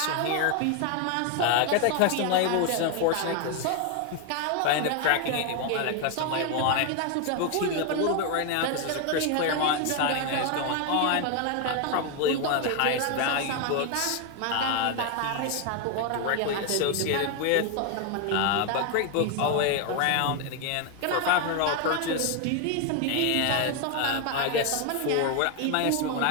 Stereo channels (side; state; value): both; different; correlation 0.01